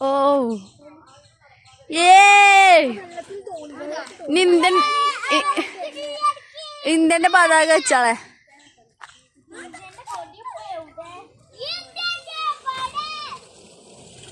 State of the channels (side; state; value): both; identical; correlation 1.00